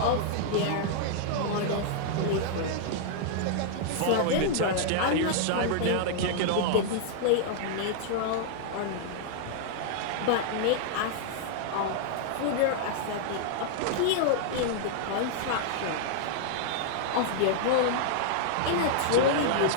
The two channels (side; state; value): both; different; correlation -0.01